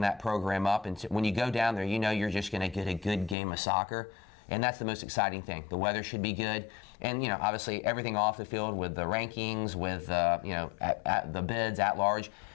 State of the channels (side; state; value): right; drops out; at 3.4 s